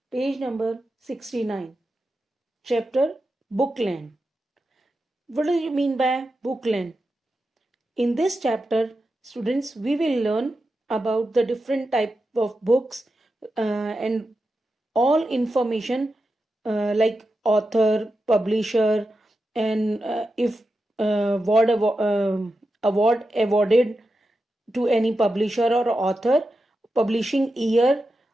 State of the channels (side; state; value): both; normal; correlation 0.90